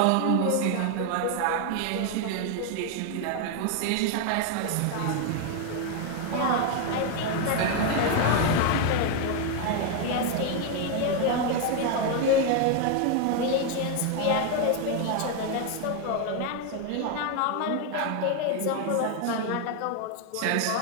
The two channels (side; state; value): both; different; correlation 0.01